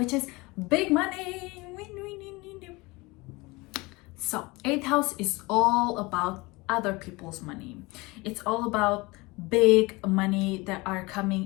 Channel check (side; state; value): right; quieter; 23.9 dB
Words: is big money. So 8th house is all about other people's money. It's all about big money that are